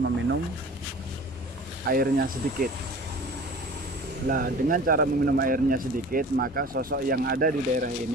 airnya sedikit. Nah, dengan cara meminum airnya sedikit, maka sosok yang ada di daerah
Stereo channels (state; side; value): normal; both; correlation 0.42